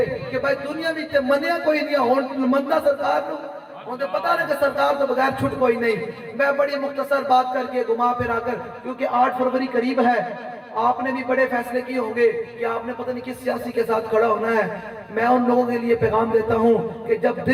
کہ بھائی دنیا میں تے منیا کوئی نہیں ہون مندہ سرکار کو، انہیں پتا نہیں کہ سرکار تو بغیر چھٹ کوئی نہیں۔ میں بڑی مختصر بات کر کے گھما پھرا کر، کیونکہ 8 فروری قریب ہے، آپ نے بھی بڑے فیصلے کیے ہوں گے کہ آپ نے پتہ نہیں کس سیاسی کے ساتھ کھڑا ہونا ہے، میں ان لوگوں کے لیے پیغام دیتا ہوں کہ جب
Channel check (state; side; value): identical; both; correlation 1.00